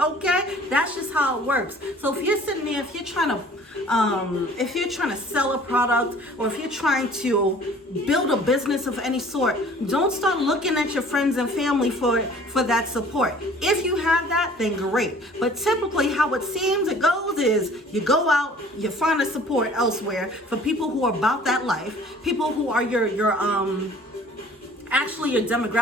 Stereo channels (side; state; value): both; normal; correlation 0.51